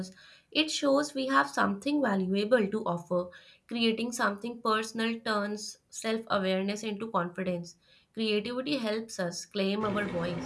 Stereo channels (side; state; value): both; identical; correlation 1.00